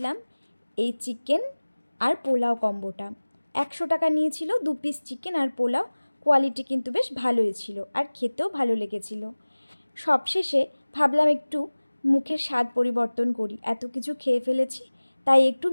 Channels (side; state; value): both; inverted; correlation -1.00